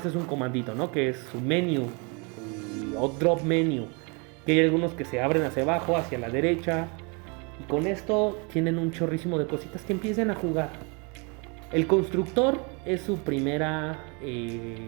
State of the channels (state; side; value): quieter; left; 32.2 dB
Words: es un comandito, ¿no? Que es su menu o drop menu, que hay algunos que se abren hacia abajo, hacia la derecha, y con esto tienen un chorrísimo de cositas que empiecen a jugar. El constructor es su primera